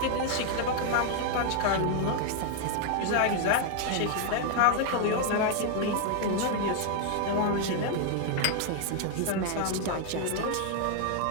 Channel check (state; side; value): different; both; correlation 0.00